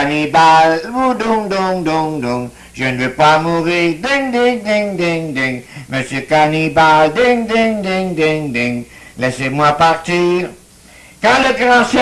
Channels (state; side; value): identical; both; correlation 1.00